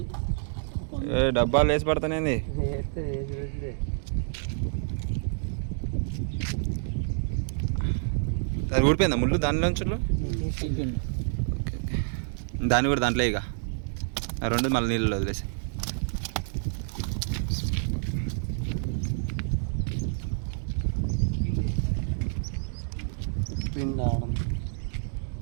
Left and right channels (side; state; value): left; silent; digital silence